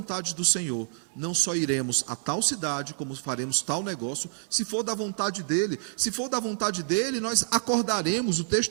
do Senhor, não só iremos a tal cidade, como faremos tal negócio, se for da vontade dele, nós acordaremos, o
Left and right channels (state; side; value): silent; left; 59 dB below the other